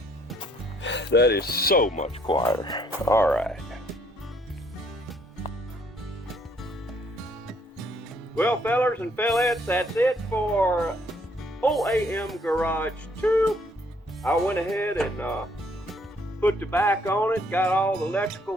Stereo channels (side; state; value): both; normal; correlation 0.66